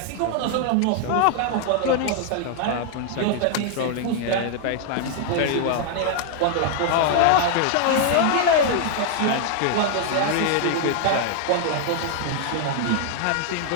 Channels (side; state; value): both; different; correlation 0.00